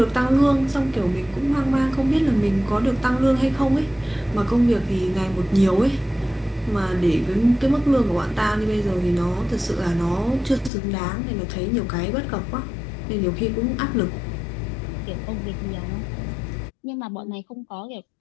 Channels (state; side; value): drops out; right; at 10.7 s